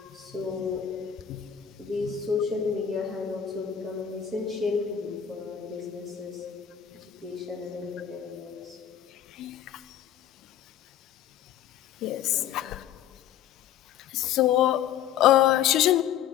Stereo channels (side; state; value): right; quieter; 9.8 dB